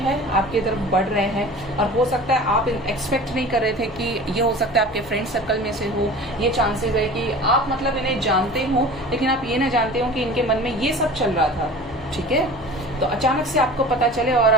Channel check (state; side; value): noise; left; hum, 23 dB below the sound